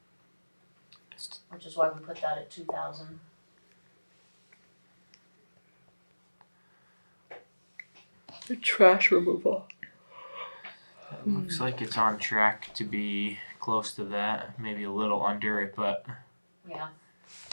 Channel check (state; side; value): inverted; both; correlation -1.00